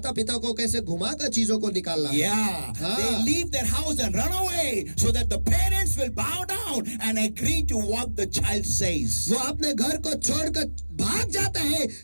पिता को कैसे घुमाकर चीजों को निकालना है। Yeah, they leave their house and run away so that the parents will bow down and agree to what the child says. वो अपने घर को छोड़कर भाग जाता है।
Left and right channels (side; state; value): both; inverted; correlation -1.00